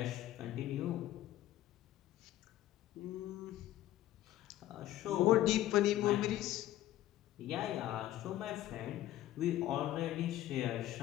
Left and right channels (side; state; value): right; quieter; 13.9 dB